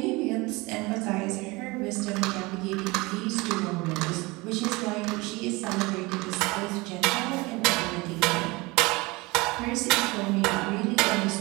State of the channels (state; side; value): quieter; left; 23.8 dB